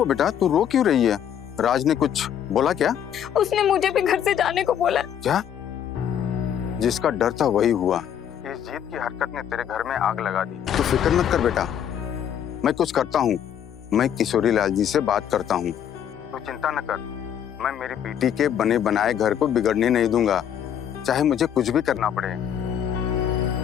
बेटा, तू रो क्यों रही है? राज ने कुछ बोला क्या? उसने मुझे भी घर से जाने को बोला। क्या? जिसका डर था वही हुआ। इस जीत की हरकत ने तेरे घर में आग लगा दी। तू फिक्र मत कर बेटा, मैं कुछ करता हूँ। मैं किशोरी लाल जी से बात करता हूँ। तू चिंता न कर, मैं मेरी बेटी के बने बनाए घर को बिगड़ने नहीं दूंगा, चाहे मुझे कुछ भी करना पड़े।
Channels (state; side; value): quieter; right; 9.3 dB